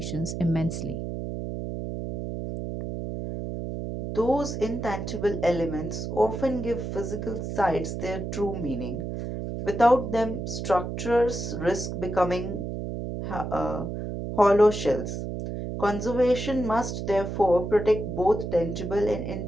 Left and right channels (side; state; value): right; noise; hum, 5 dB below the sound